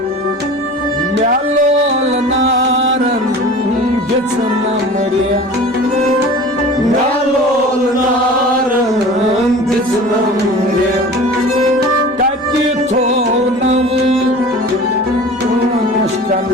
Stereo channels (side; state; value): left; noise; hum, 29 dB below the sound